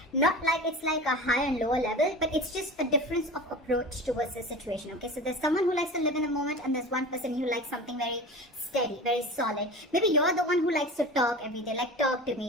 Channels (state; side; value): normal; both; correlation 0.34